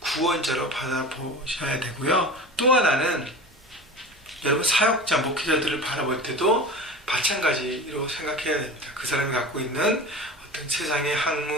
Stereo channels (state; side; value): normal; both; correlation 0.33